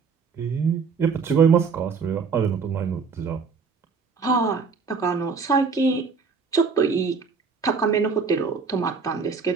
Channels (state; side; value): quieter; left; 5.2 dB